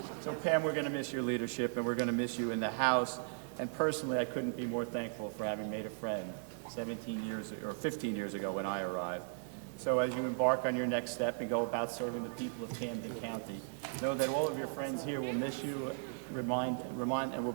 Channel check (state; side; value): silent; left; digital silence